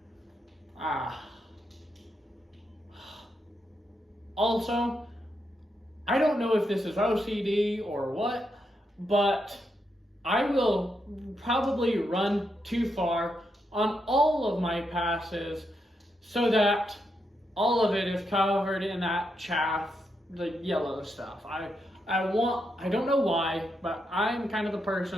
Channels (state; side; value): normal; both; correlation 0.82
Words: Also, I don't know if this is OCD or what, but I will probably run too far on all of my passes so that all of it is covered in that chaff, the yellow stuff. I don't know why, but I'm kind of the